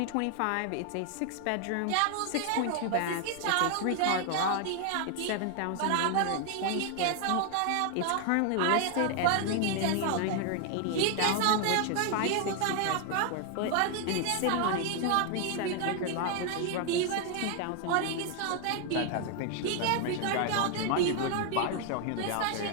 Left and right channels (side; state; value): both; different; correlation 0.00